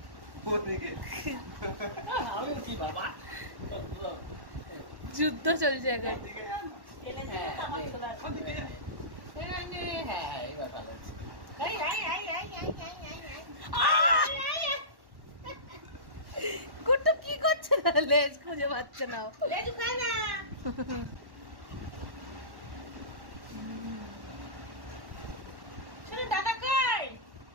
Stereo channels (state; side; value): late; left; 1.1 ms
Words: যুদ্ধ চলছে এখন। কুট্টু কি করছে না, লেজ খুঁজে পাচ্ছে না।